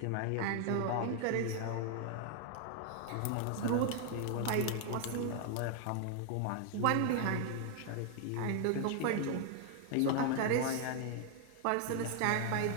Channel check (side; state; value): both; different; correlation 0.00